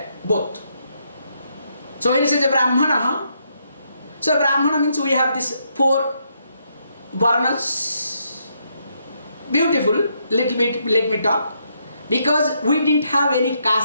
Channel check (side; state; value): both; inverted; correlation -0.76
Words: both. So when it says a Brahmana, so Brahmana means we have these 4 varnas. Beautiful, little bit, let me talk. Because we didn't have any